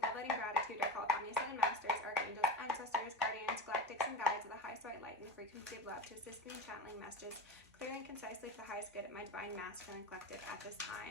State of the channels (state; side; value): normal; both; correlation 0.25